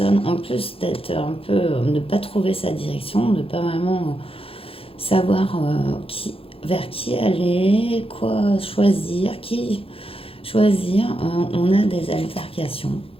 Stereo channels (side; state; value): right; late; 0.27 ms